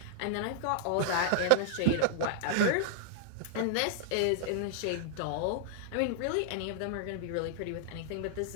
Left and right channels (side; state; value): both; different; correlation -0.01